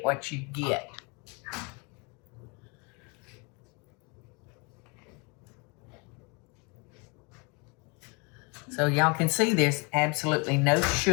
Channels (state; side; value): quieter; right; 30.8 dB